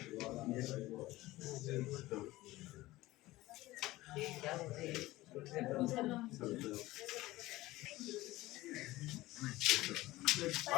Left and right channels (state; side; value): quieter; right; 18.0 dB